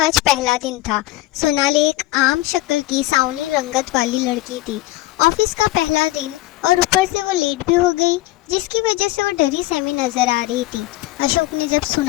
आज पहला दिन था। सोनाली एक आम शक्ल की सावनी रंगत वाली लड़की थी। ऑफिस का पहला दिन और ऊपर से वो लेट भी हो गई, जिसकी वजह से वो डरी सहमी नजर आ रही थी। अशोक ने जब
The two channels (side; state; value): right; quieter; 17.4 dB